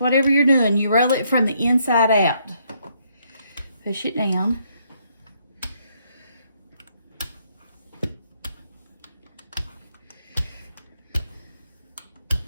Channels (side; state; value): both; inverted; correlation -0.72